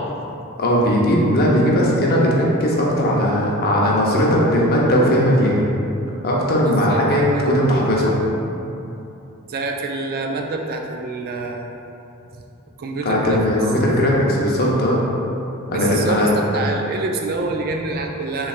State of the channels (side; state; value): both; normal; correlation 0.35